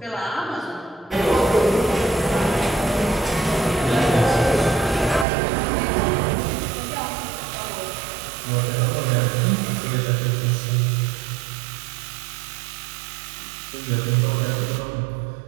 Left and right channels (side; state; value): left; drops out; at 5.2 s